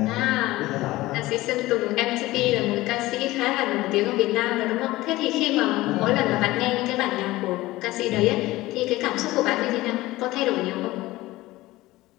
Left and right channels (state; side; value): quieter; right; 18.3 dB